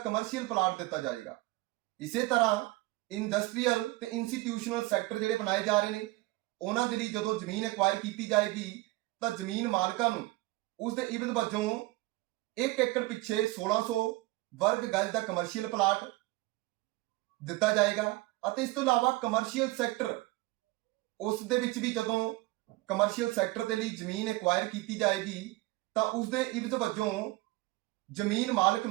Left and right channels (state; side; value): quieter; left; 21.0 dB